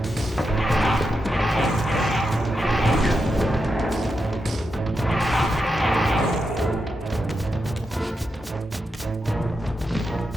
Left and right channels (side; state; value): both; normal; correlation 0.86